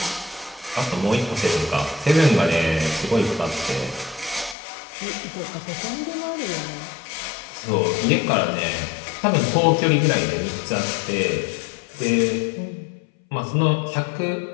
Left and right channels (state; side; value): drops out; right; at 4.5 s